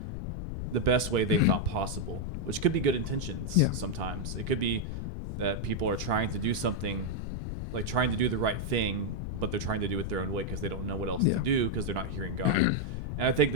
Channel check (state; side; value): noise; left; rumble, 4 dB below the sound